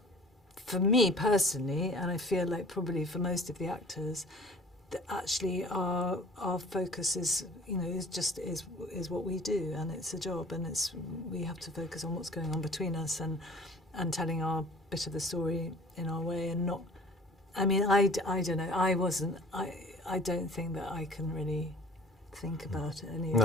For me personally, and I feel like probably for most of the actors, that actually our focus is what we do, and it's a job, and we have to focus on what's going on between us and telling our bit of the story in our way, and not. I mean, I don't know. I don't think that I can really think about any of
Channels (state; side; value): normal; both; correlation 0.47